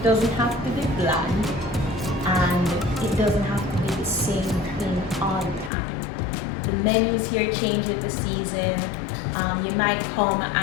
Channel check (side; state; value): right; drops out; at 5.7 s